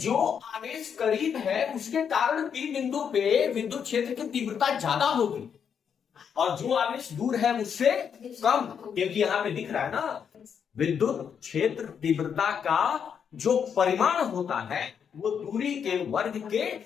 आवेश करीब है उसके कारण P बिंदु पे विद्युत क्षेत्र की तीव्रता ज्यादा होगी, और जो आवेश दूर है उससे कम, क्योंकि यहाँ पे दिख रहा है ना, विद्युत क्षेत्र तीव्रता का जो परिमाण होता है वो दूरी के वर्ग के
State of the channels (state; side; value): quieter; right; 7.4 dB